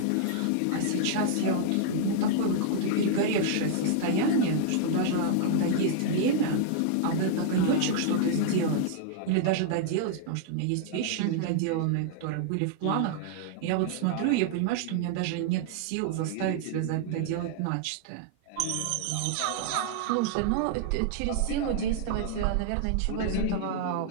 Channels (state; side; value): different; both; correlation -0.01